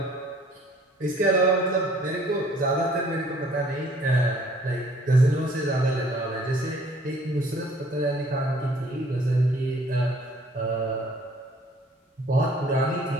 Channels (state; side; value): normal; both; correlation 0.57